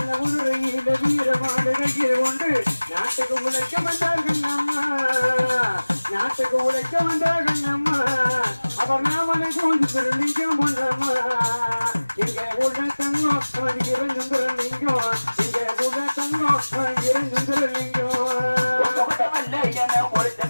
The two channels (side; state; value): both; inverted; correlation -1.00